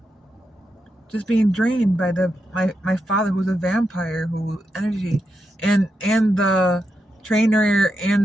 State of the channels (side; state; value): both; normal; correlation 0.85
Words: Just being drained by my father, who's a vampire, who energy, and the trainer